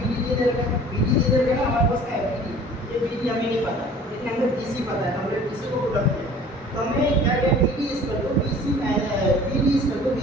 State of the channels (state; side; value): normal; both; correlation 0.48